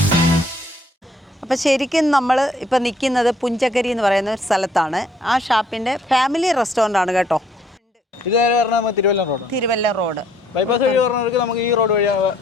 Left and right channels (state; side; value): normal; both; correlation 0.65